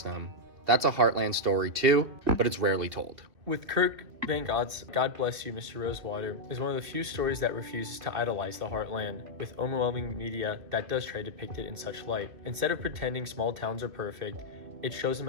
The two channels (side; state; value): left; late; 2.4 ms